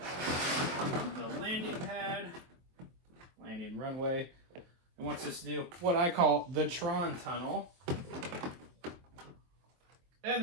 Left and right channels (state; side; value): late; left; 23 ms